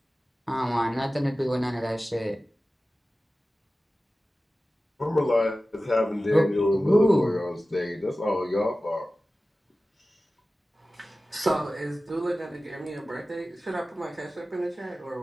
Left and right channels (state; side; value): normal; both; correlation 0.96